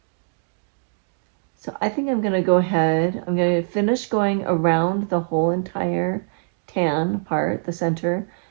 So I think I'm going to go ahead, I'm going to finish going around the whole entire tan part, the center,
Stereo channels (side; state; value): left; silent; digital silence